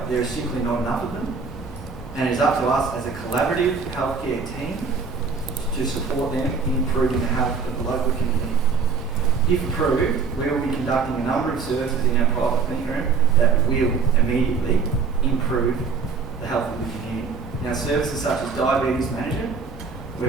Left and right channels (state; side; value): quieter; left; 5.1 dB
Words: There is simply not enough of them. And it is up to us as a collaborative healthcare team to support them in improving the health of the local community. If approved, we will be conducting a number of services in our private clinic room that will immediately improve the health of the community. Now, services such as diabetes management,